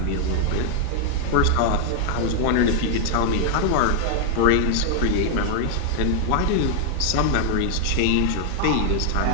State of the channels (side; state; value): both; different; correlation 0.00